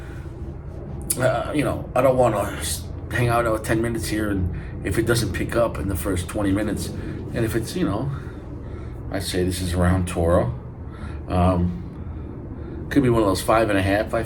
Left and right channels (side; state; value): both; identical; correlation 1.00